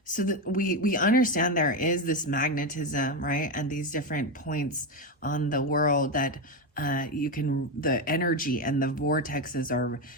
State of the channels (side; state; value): both; normal; correlation 0.11